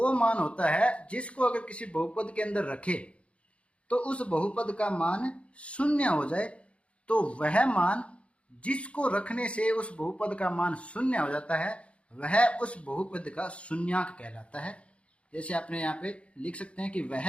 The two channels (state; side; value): late; right; 0.061 ms